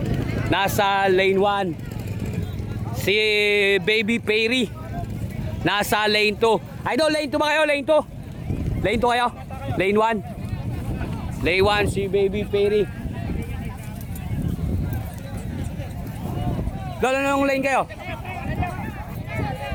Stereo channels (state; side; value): identical; both; correlation 1.00